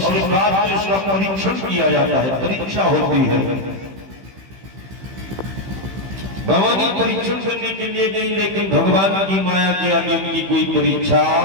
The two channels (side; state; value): left; late; 15 ms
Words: बाद उसका परीक्षण किया जाता है, परीक्षा होती है। भवानी परीक्षण करने के लिए गई, लेकिन भगवान की माया के आगे उनकी कोई परीक्षा